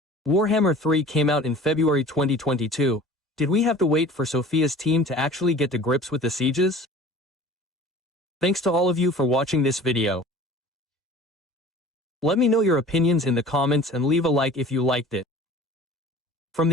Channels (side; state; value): both; normal; correlation 0.44